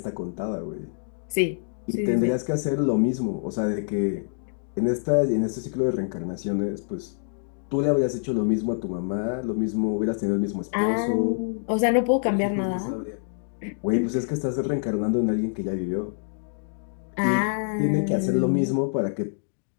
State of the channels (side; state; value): right; silent; digital silence